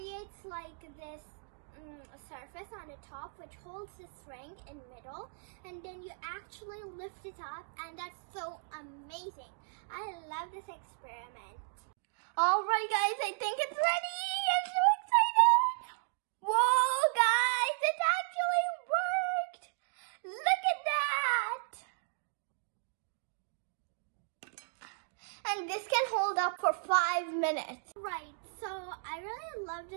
like this surface on the top which holds the string in middle, and then you actually lift it up, and that's so amazing. I love this experiment. Alright guys, I think it's ready. I'm so excited. Whoa guys, it actually worked. Look at that. And this can hold up for 5 minutes. Right, so I really love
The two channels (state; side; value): silent; left; digital silence